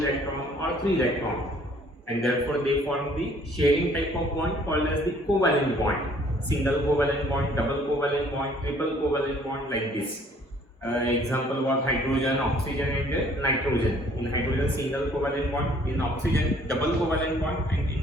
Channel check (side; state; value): both; normal; correlation 0.59